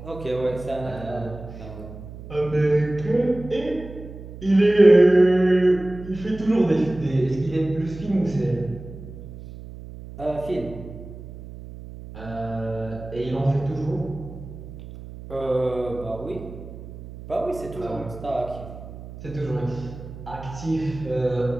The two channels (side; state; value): right; noise; hum, 14 dB below the sound